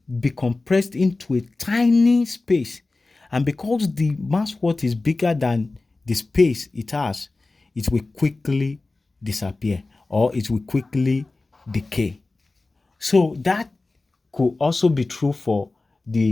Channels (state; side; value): quieter; right; 3.3 dB